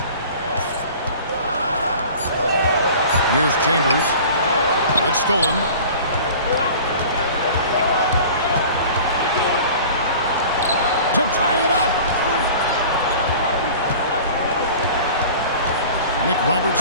Here's Chambers. It's stolen. To tie it up. Nick Roberts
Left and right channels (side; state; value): both; inverted; correlation -0.42